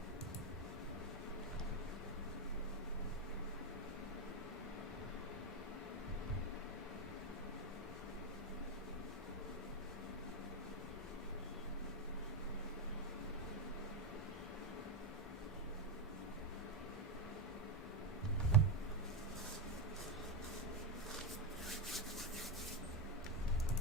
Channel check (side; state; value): both; normal; correlation 0.08